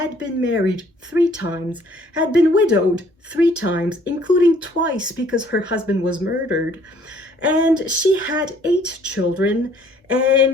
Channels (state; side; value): normal; both; correlation 0.60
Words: been married 3 times, had been widowed 3 times, including twice because her husband was murdered. And she had 8 children,